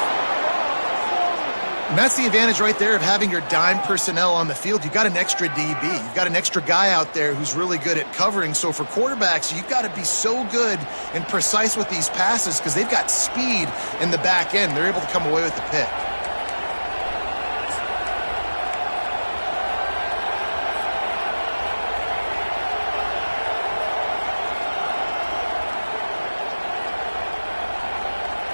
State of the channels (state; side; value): inverted; both; correlation -1.00